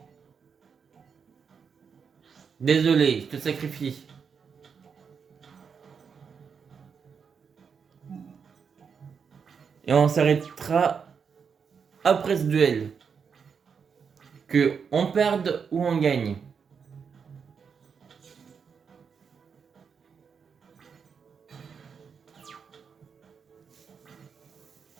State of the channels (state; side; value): quieter; left; 6.3 dB